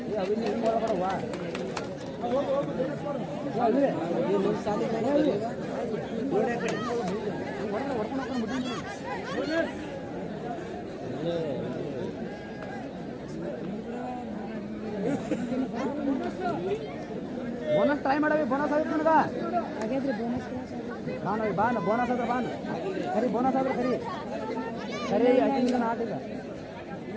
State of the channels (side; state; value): both; identical; correlation 1.00